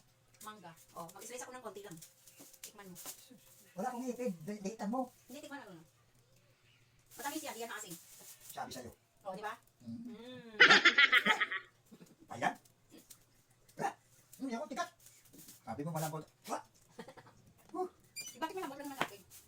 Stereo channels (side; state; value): both; identical; correlation 1.00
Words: Mangga. Oh, mag-slice ako ng konti lang. Tikman mo. Wala akong ipid. Dahitan mo. Hindi, tikman na lang. Matamis yan, yan na asin. Sabi sa'yo. Oh, di ba? Mm. Ayan. Hindi ako tikat. Sabi mo malambot. Wah! Bakit malambot lang naman natin?